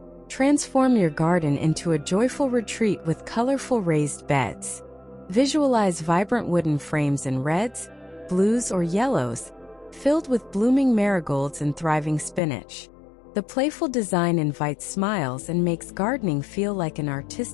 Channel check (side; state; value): right; drops out; at 12.4 s